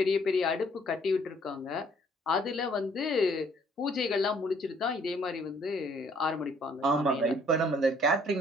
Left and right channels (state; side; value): normal; both; correlation 0.62